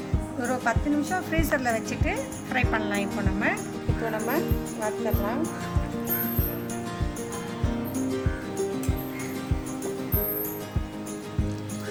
ஒரு 10 நிமிஷம் ஃப்ரீசரில் வச்சுட்டு ஃப்ரை பண்ணலாம். இப்போ நம்ம வறுத்துடலாம்.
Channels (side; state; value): both; identical; correlation 1.00